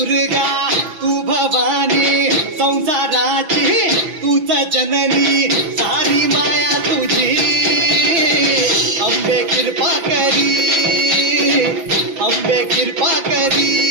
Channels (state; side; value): late; left; 5.9 ms